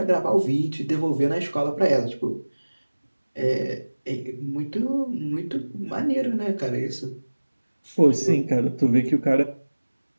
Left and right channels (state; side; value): inverted; both; correlation -1.00